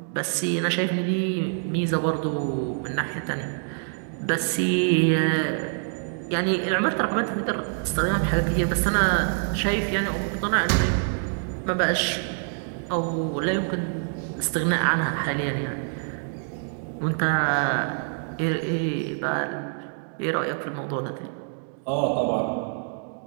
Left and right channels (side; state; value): left; silent; 58 dB below the other